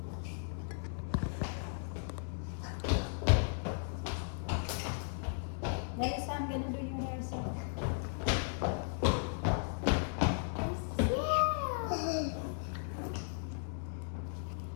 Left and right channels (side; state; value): right; silent; digital silence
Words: Guys, I'm gonna do your hair so.